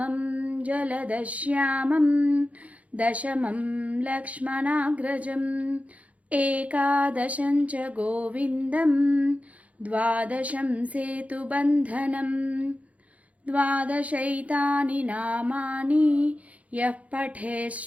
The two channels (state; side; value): late; left; 0.067 ms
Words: జలదశ్యామం, దశమం లక్ష్మణాగ్రజం, ఏకాదశం చ గోవిందం, ద్వాదశం సేతుబంధనం. ద్వాదశైతాని నామాని యః పఠేత్